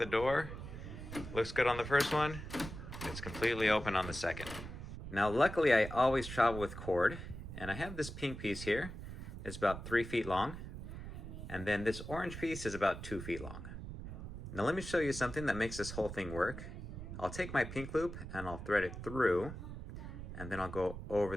door, looks good on the first one, it's completely open on the second. Now luckily I always travel with cord, and I have this pink piece here. It's about 3 feet long, and then this orange piece is about 2 feet long. Now let me show you something that makes this whole thing work. I'll take my pink loop and I'll thread it through, and then I'll go over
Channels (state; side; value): noise; right; rumble, 9 dB below the sound